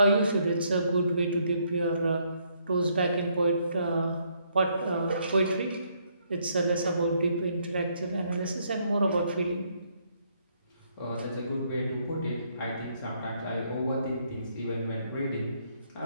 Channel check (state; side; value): inverted; both; correlation -0.71